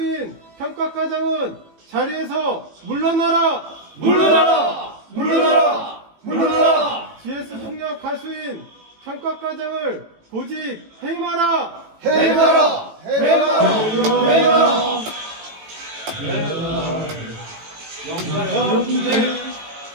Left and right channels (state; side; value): late; left; 18 ms